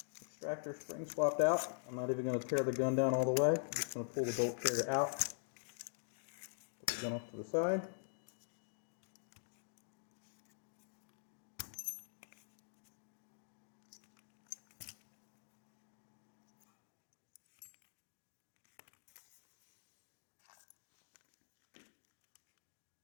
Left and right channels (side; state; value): right; silent; digital silence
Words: extractor spring swapped out. I'm not even going to tear the gun down all the way. I'm just going to pull the bolt carrier out. Put the gun off to the side.